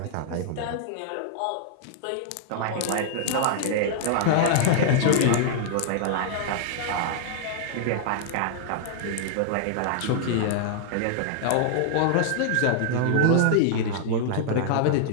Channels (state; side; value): different; both; correlation -0.01